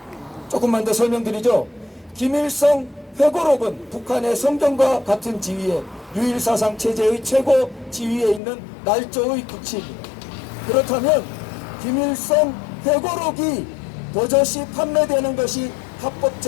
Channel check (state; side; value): drops out; right; at 8.4 s